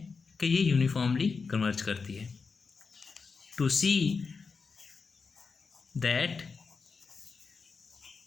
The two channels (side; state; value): right; quieter; 4.9 dB